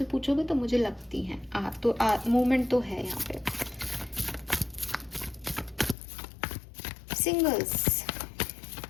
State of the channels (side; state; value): right; drops out; at 6.0 s